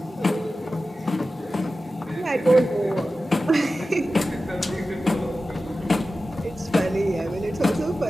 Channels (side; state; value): both; normal; correlation 0.94